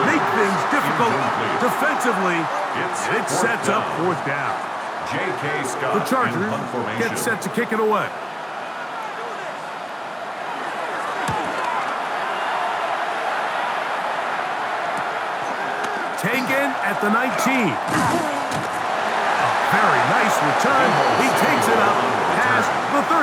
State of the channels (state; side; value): identical; both; correlation 1.00